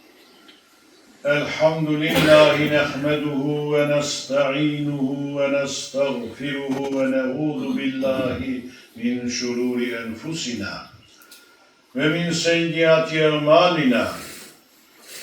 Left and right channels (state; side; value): identical; both; correlation 1.00